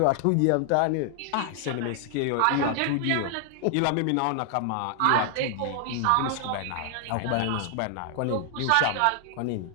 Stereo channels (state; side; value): different; both; correlation 0.00